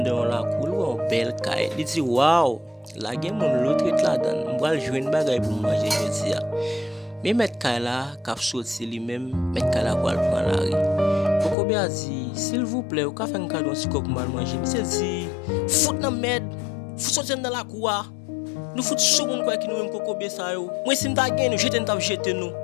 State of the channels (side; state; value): right; drops out; at 11.6 s